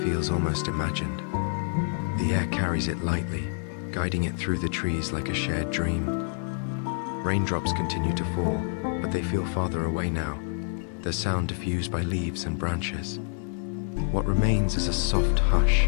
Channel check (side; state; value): right; silent; 56 dB below the other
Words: feels almost imagined. The air carries it lightly, guiding it through the trees like a shared dream. Raindrops continue to fall, but they feel farther away now, their sound diffused by leaves and branches. What remains is a soft hush,